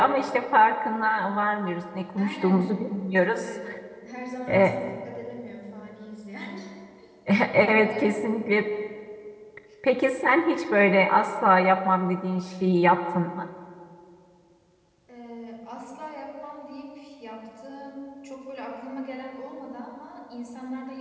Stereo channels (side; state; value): both; identical; correlation 1.00